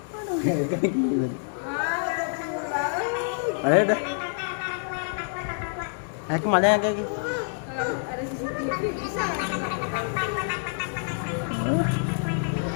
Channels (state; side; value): silent; right; 60 dB below the other